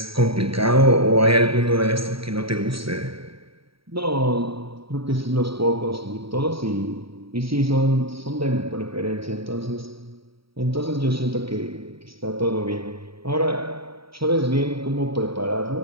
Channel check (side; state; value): left; late; 0.75 ms